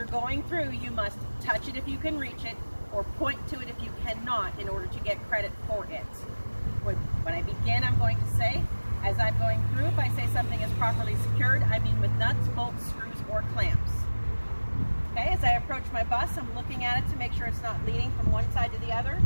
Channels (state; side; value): inverted; both; correlation -1.00